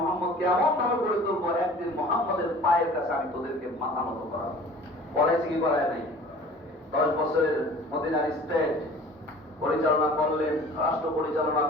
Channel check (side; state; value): both; normal; correlation 0.45